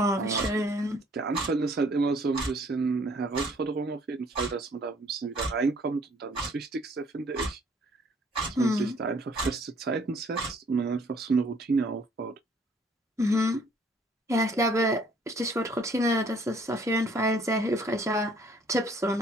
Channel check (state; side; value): normal; both; correlation 0.60